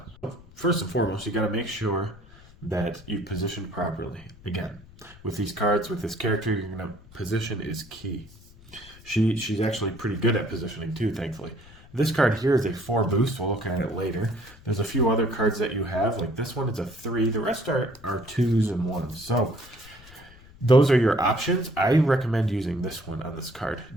First and foremost, you got to make sure that you position properly. Again, with these cards, with this character, you're gonna position is key. She's actually pretty good at positioning too, thankfully. This card here is a 4 boost. We'll look at it later. There's a few other cards that you have, like this one is a 3. The rest are 2s and 1s. So those are your options. I recommend using this one on this card.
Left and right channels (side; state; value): left; noise; rumble, 22 dB below the sound